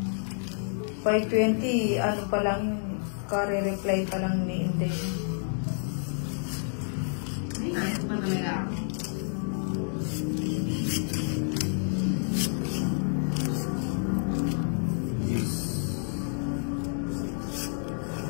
5:20, ano pa lang yun. Kare-reply pa lang ni Inday. Ay, ano pa talaga ako?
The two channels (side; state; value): right; silent; digital silence